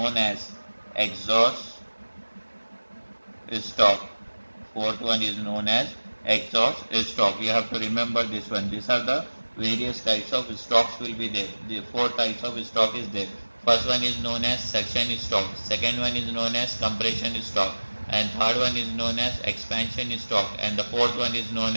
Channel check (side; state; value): both; inverted; correlation -1.00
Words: as exhaust stroke. Fourth one is known as exhaust stroke. You have to remember this one. These are the various types of strokes will be there. The 4 types of stroke is there. First one is known as section stroke. Second one is known as compression stroke. And third one is known as expansion stroke. And the fourth one is known